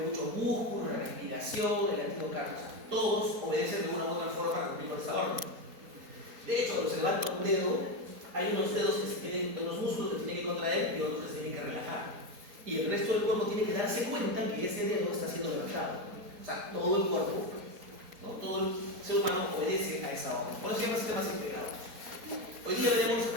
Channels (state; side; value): late; left; 4.3 ms